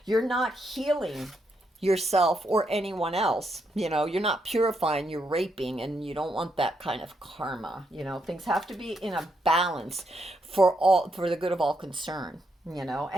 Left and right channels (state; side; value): normal; both; correlation 0.79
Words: you're not healing yourself or anyone else. You're not purifying, you're raping, and you don't want that kind of karma. Things have to be in a balance for the good of all concerned,